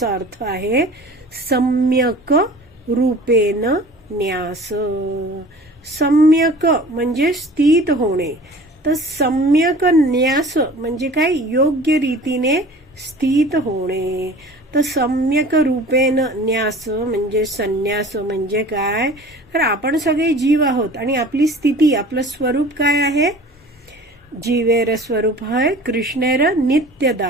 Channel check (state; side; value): normal; both; correlation 0.43